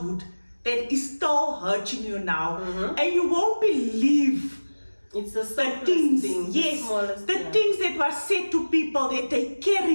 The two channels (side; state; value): both; inverted; correlation -1.00